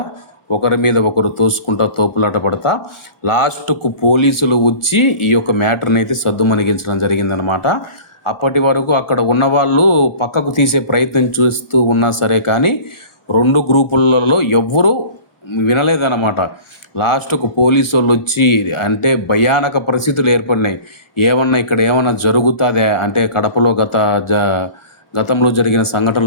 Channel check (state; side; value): late; right; 1.4 ms